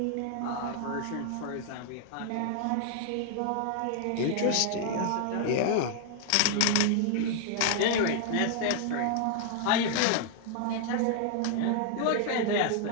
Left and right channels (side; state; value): both; different; correlation 0.00